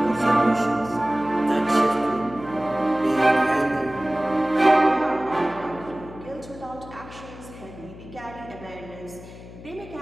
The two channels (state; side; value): noise; left; hum, 16 dB below the sound